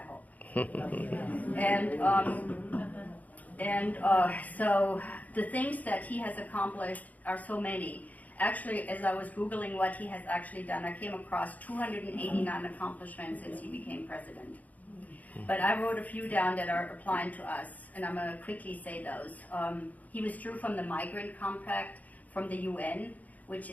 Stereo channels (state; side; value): late; right; 0.076 ms